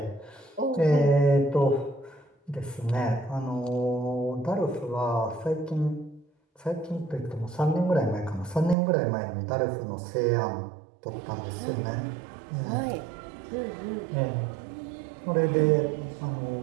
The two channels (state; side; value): drops out; left; at 8.8 s